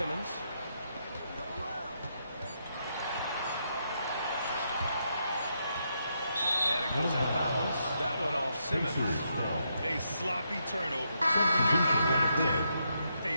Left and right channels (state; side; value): inverted; both; correlation -0.80